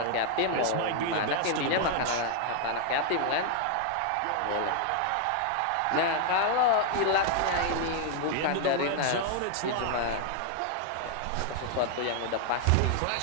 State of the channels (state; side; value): different; both; correlation 0.00